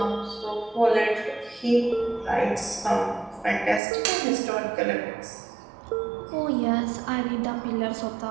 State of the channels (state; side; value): drops out; left; at 3.8 s